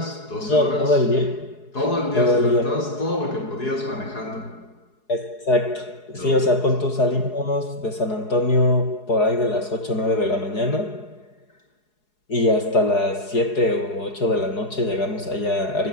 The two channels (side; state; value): right; late; 4.8 ms